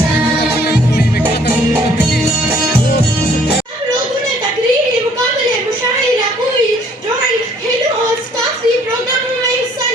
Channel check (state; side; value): normal; both; correlation 0.60